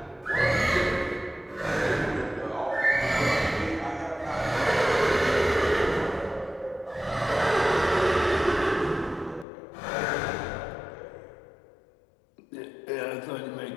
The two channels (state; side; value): drops out; right; at 9.5 s